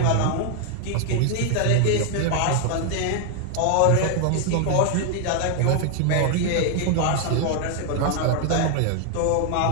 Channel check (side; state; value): both; different; correlation 0.00